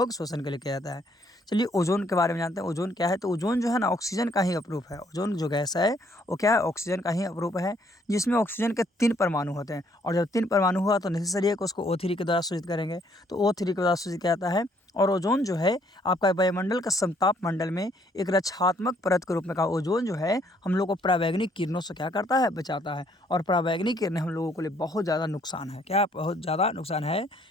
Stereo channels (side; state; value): both; normal; correlation 0.66